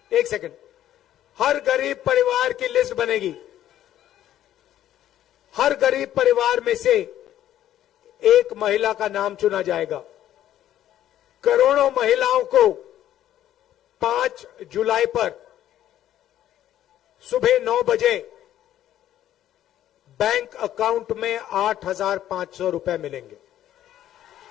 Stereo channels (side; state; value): right; quieter; 12.1 dB